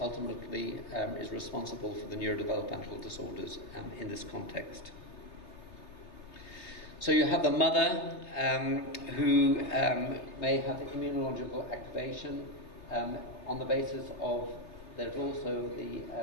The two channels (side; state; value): right; late; 3.2 ms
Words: is responsible for the neurodevelopmental disorders in this context. So you have the mother who may have immunological activation on the basis of, there's also the